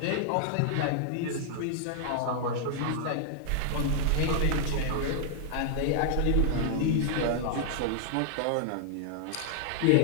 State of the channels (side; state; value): both; different; correlation -0.01